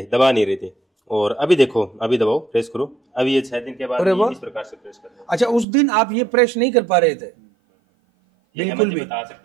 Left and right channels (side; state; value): left; drops out; at 5.7 s